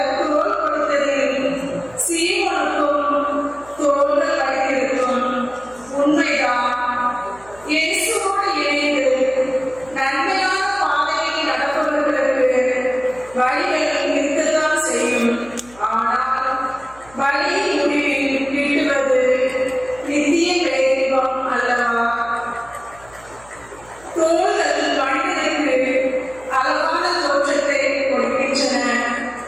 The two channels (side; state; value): right; noise; hum, 24 dB below the sound